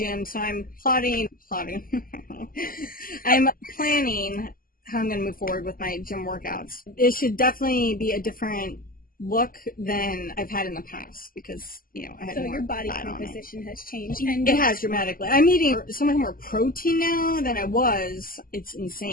so I'm plotting. I'm planning how I'm going to move forward with my gym workouts. It should definitely be a different look than I've had in the past because, I had more your body fat composition has changed. And it has dramatically. I'm eating so much more protein now than I was. It's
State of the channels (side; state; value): right; late; 0.42 ms